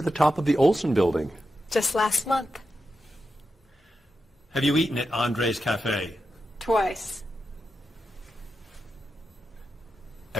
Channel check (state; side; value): normal; both; correlation 0.89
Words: the top of the Olsen building? Just last month. Have you eaten at Andre's Cafe? Twice.